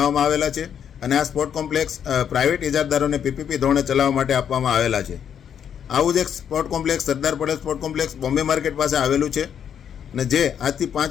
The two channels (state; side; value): quieter; right; 8.5 dB